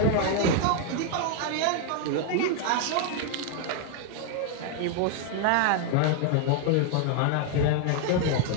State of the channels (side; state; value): both; different; correlation 0.00